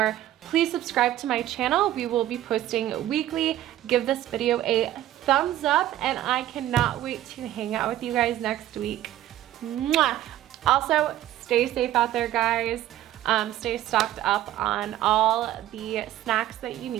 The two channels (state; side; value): quieter; left; 13.4 dB